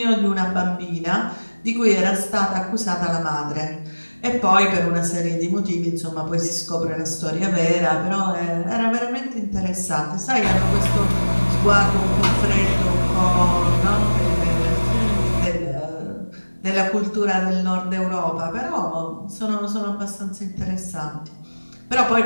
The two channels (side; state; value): both; inverted; correlation -1.00